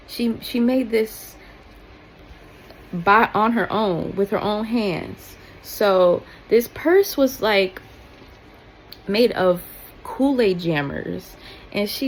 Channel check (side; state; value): both; identical; correlation 1.00